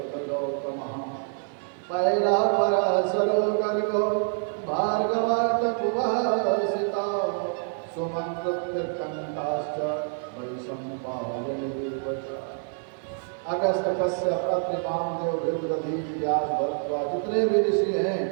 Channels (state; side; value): silent; left; 60 dB below the other